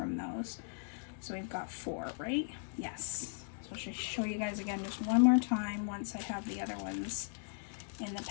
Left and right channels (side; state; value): right; silent; digital silence